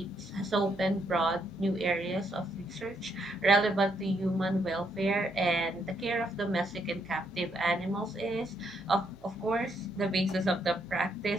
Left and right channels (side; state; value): both; normal; correlation 0.75